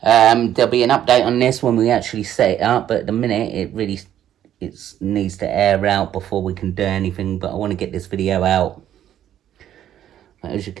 There'll be an update on this when we actually set it up, but at the minute it needs to air out before we can do anything. But I want to get this video out. But as you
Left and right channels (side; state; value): left; quieter; 11.1 dB